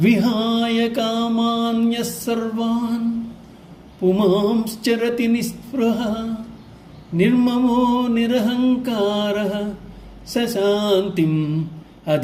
విహాయ కామాన్య సర్వాన్ పుమాంశ్చరతి నిస్పృహ నిర్మమో నిరహంకార సశాంతిం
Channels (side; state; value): both; identical; correlation 1.00